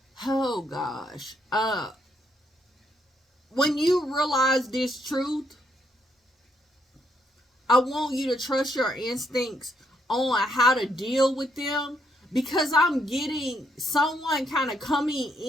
Oh gosh. When you realize this truth, I want you to trust your instincts on how to deal with them, because I'm getting someone kind of coming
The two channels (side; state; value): both; normal; correlation 0.74